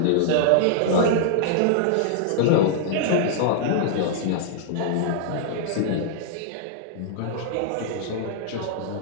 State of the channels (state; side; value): different; both; correlation -0.01